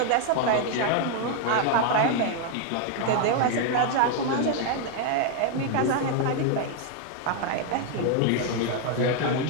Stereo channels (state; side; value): different; both; correlation 0.00